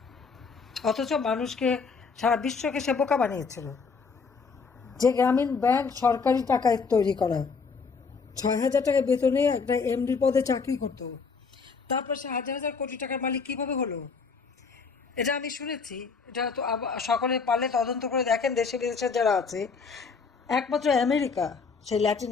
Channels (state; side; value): quieter; right; 5.1 dB